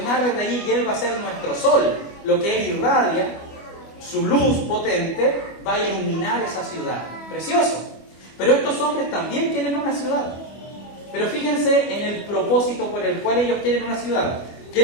desde allí y Él va a ser nuestro sol, lo que Él irradia. Su luz potente va a iluminar esa ciudad. Precioso. Pero estos hombres también quieren una ciudad. Pero fíjense en el propósito por el cual ellos quieren una ciudad.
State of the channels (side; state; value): right; late; 25 ms